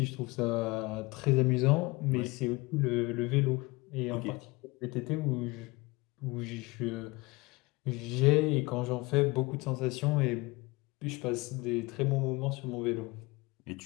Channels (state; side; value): quieter; right; 23.7 dB